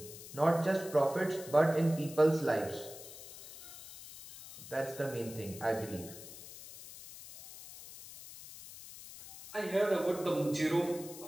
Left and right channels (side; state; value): left; noise; hiss, 15 dB below the sound